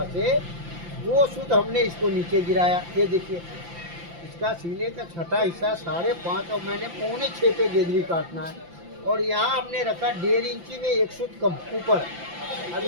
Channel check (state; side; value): late; left; 5.8 ms